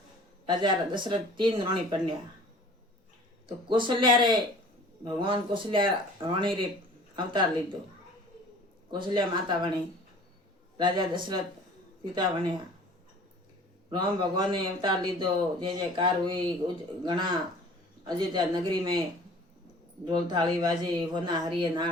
राजा दशरथ 3 रानी पन्या, तो कौशल्या रे भगवान कौशल्या रानी रे अवतार लीधो। कौशल्या माता बनी, राजा दशरथ पिता बन्या। राम भगवान ने अवतार लीधो, जय जयकार हुई। घना अयोध्या नगरी में ढोल थाली बाजे, वना हरिये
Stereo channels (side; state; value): both; normal; correlation 0.47